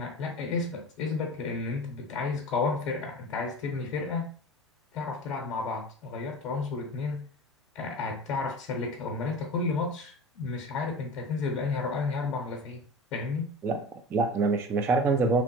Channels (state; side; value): normal; both; correlation 0.34